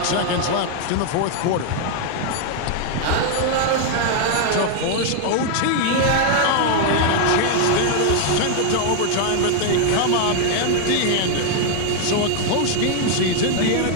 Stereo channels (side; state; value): both; different; correlation 0.00